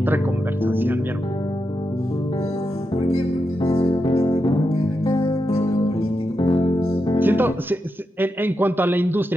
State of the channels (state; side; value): normal; both; correlation 0.86